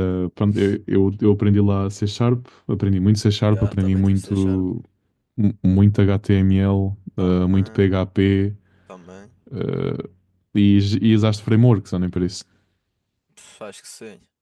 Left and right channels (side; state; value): both; identical; correlation 1.00